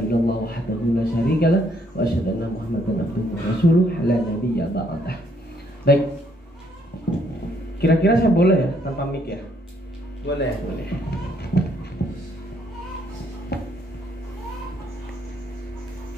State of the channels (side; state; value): both; normal; correlation 0.69